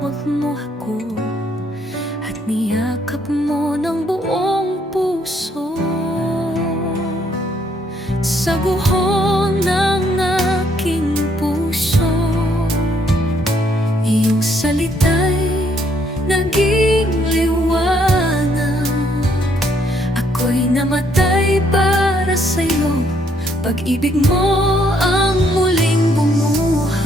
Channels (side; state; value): both; normal; correlation 0.70